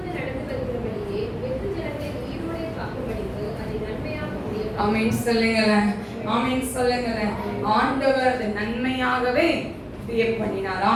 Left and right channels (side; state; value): both; identical; correlation 1.00